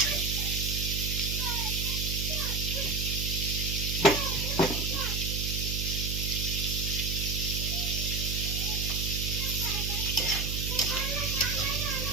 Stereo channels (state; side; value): noise; right; hum, 2 dB below the sound